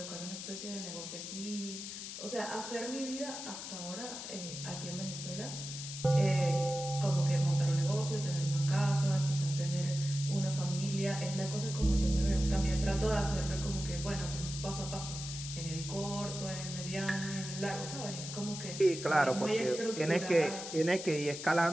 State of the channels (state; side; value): noise; left; hiss, 8 dB below the sound